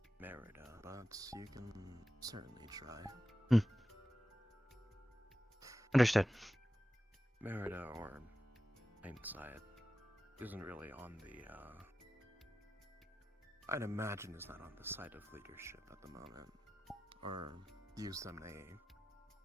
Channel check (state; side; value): normal; both; correlation 0.93